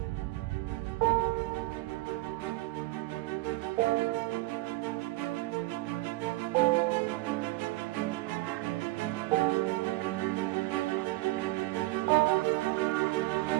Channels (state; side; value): quieter; left; 20.1 dB